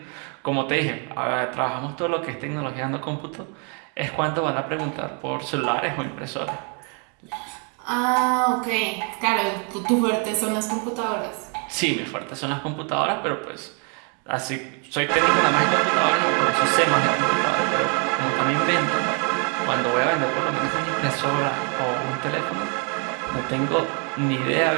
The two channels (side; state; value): left; quieter; 37.5 dB